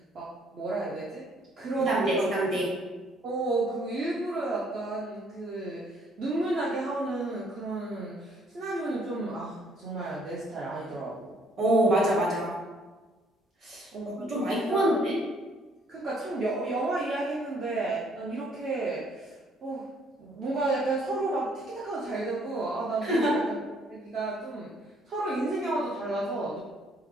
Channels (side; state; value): both; normal; correlation 0.64